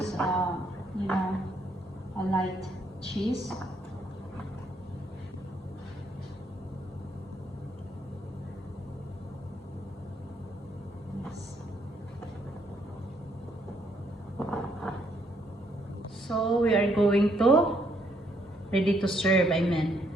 a light cheese. So we are going to ready to serve, I mean.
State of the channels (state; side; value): normal; both; correlation 0.71